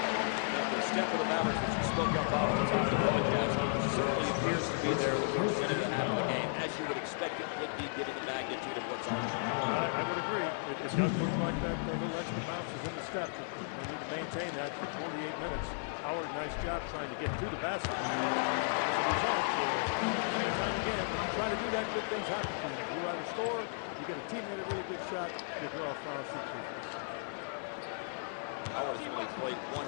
and the step of the Mavericks that you spoke up, Bob, at the top of the broadcast certainly appears to be there in the first minute and a half of the game, as you would expect it would be given the magnitude of what's on the line. I would agree. It does look like that little extra bounce is in the step, but they need to maintain that for 48 minutes. Howard, nice job trying to get to the basket. And as a result, time and time again, when you try to do that, good things happen to you. You either score, you get a teammate a really good shot, you draw a foul, shoot free throws. Howard has only played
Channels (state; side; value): silent; right; 55 dB below the other